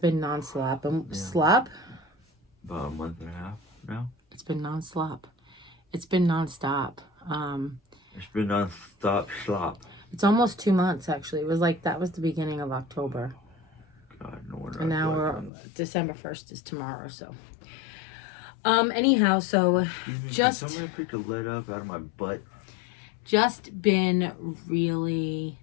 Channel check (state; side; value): drops out; right; at 15.5 s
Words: non-stop. Slop? About a month and a half now. It's been non-stop. It's been non-stop. It's been non-stop slop. It's almost 2 months, actually. It was like, that was the beginning of October. God, no wonder. And now we're, December 1st is tomorrow, so. Anyhow, so just. Can somebody pick the lead up out of my butt? Just been really